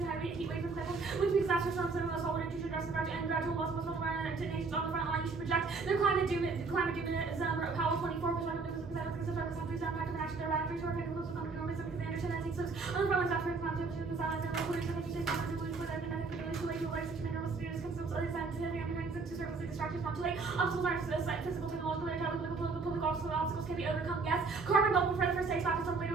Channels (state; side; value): quieter; left; 4.3 dB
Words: high rate heat wave from climate. When we disaster storms and loss, all water intrusion, dress and gradual loss of coastal environment to nations on the front line, you should project their climate doom Powell 24 perspective because of the countries that impact of action their radically short effect close to common norms because they understand that takes on the front lines after climate change and silence and local research takes on the belief with economic too late to life such a mineral students consumes other scientific and to service distractions not too late. Obstacles are physical, technological, public obstacles can be overcome. Yes, carbon bubble for the first stage factors later